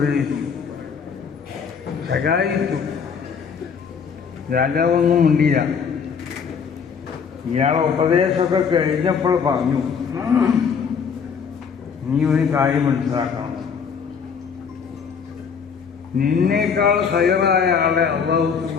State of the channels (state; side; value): quieter; right; 6.4 dB